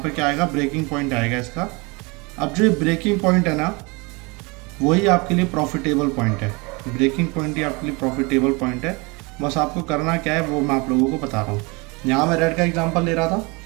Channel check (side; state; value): left; quieter; 27.7 dB